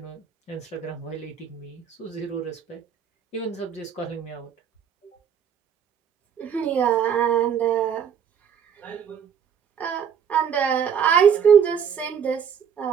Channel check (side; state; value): left; quieter; 7.7 dB